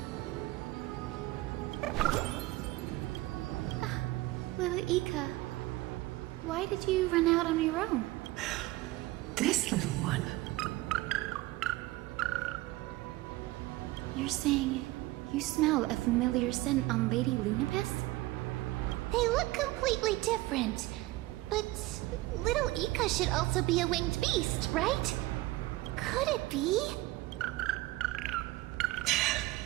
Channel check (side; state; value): left; quieter; 18.9 dB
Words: Little Ika, why did you run out on your own? This little one. You're saying you smell a familiar scent on Lady Lunapis? They look completely different. But little Ika should also be a winged beast, right? Could it be?